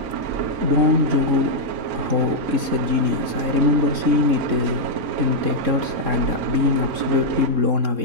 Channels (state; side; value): late; left; 3.6 ms